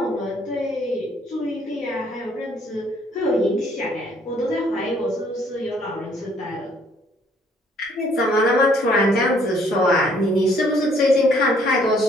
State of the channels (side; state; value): both; normal; correlation 0.63